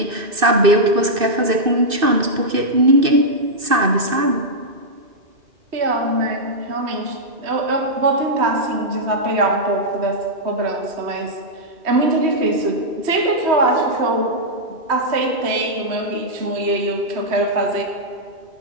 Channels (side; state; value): left; late; 2.6 ms